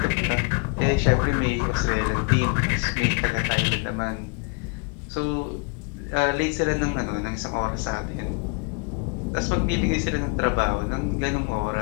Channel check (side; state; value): right; quieter; 32.9 dB